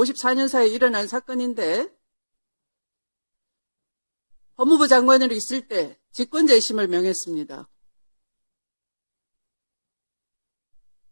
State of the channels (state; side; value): inverted; both; correlation -1.00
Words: 사이에 일어난 사건인데 법무부 장관으로 있을 때 직권재심을 명했습니다.